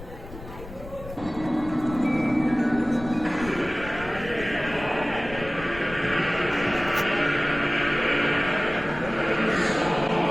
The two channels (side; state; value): left; noise; rumble, 14 dB below the sound